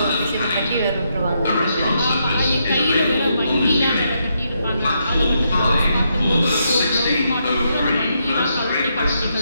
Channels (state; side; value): inverted; both; correlation -0.79